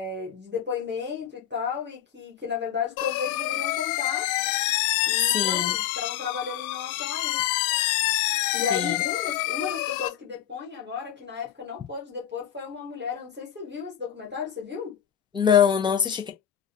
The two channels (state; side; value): quieter; right; 9.8 dB